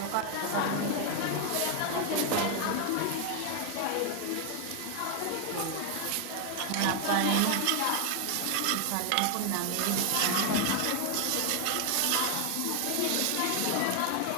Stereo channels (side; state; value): both; different; correlation 0.00